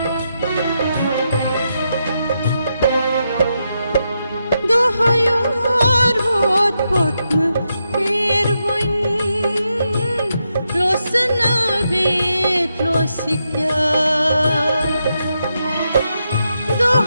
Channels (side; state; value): both; inverted; correlation -0.84